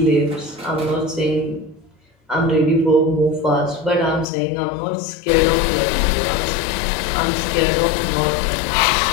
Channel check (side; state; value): right; drops out; at 4.2 s